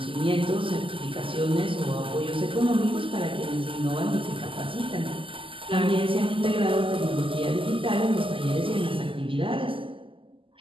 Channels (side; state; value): left; late; 0.25 ms